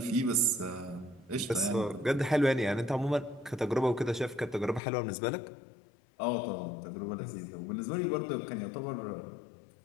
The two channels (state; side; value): drops out; right; at 4.8 s